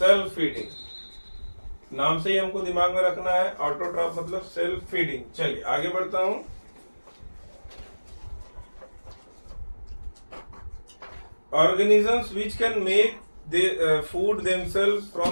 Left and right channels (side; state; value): both; inverted; correlation -1.00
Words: फीडिंग, नाम से ही हमको दिमाग में रखना है। ऑटोट्रॉफ मतलब सेल्फ फीडिंग। चलिए आगे बढ़ता हूं। Organisms which can make food themselves